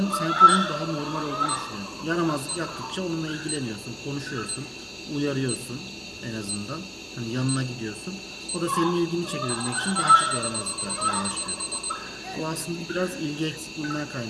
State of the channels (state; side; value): identical; both; correlation 1.00